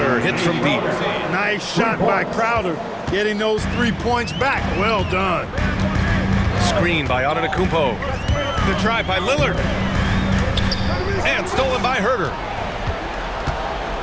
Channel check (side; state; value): both; identical; correlation 1.00